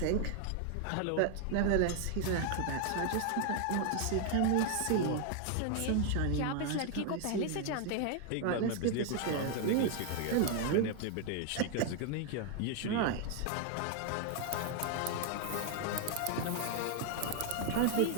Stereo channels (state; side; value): different; both; correlation 0.00